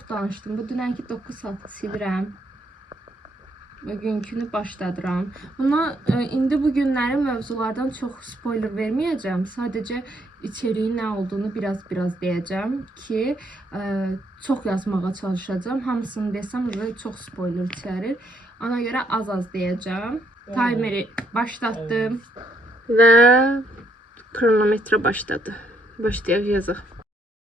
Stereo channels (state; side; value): normal; both; correlation 0.71